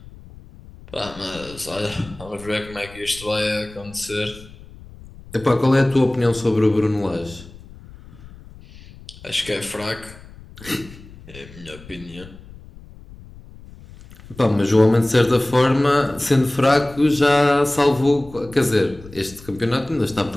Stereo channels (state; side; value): noise; left; rumble, 19 dB below the sound